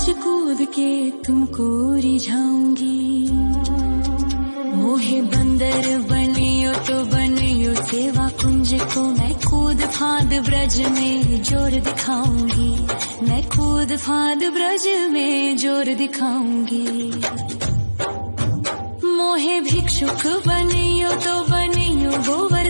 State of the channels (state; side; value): inverted; both; correlation -1.00